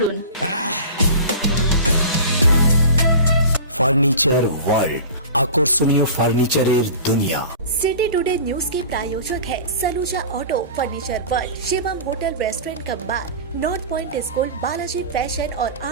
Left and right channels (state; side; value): inverted; both; correlation -0.36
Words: ফার্নিচার ওয়ার্ল্ড, আকর্ষণীয় ফার্নিচারের দুনিয়া। सिटी टुडे न्यूज के प्रायोजक है Saluja auto, furniture world, Shivam hotel restaurant cum bar, north point school, Balaji fashion और